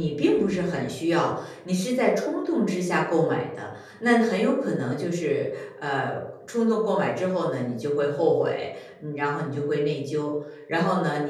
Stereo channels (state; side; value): identical; both; correlation 1.00